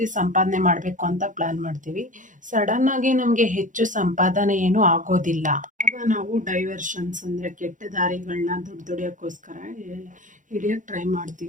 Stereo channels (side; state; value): left; late; 0.37 ms